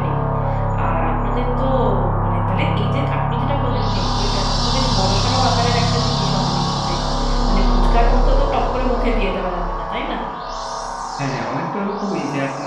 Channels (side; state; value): both; identical; correlation 1.00